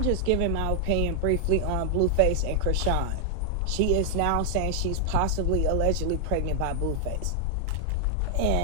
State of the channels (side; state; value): both; different; correlation 0.00